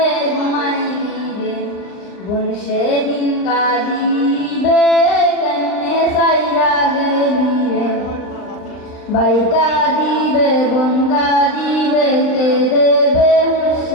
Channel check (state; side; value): late; right; 39 ms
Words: ঘুমাইবি রে, বোন সেদিন কাঁদিবে কেমনে সাইরা গেলি রে। ভাই কাঁদিবে বোন কাঁদিবে কে দেবে